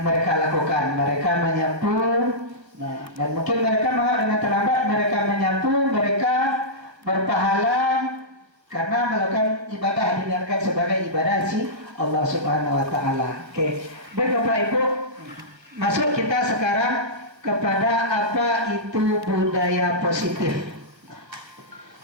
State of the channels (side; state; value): left; late; 1.4 ms